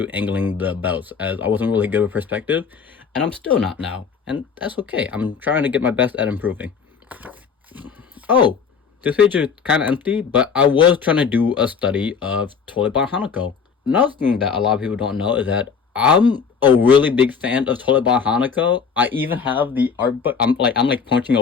angling the belts, as I wasn't really good with perspective, and I'm still not now, and that's okay. I'm trying to get my best at improving. Oh, this page is kind of empty, but I was trying to do a study of Toilet Hanako. Another thing that a lot of people don't know is that I'm a really big fan of Toilet Hanako. I even have the art book. I'm like punching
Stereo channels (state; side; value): quieter; right; 6.0 dB